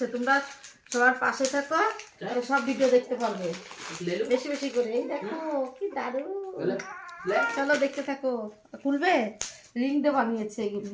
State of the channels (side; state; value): both; identical; correlation 1.00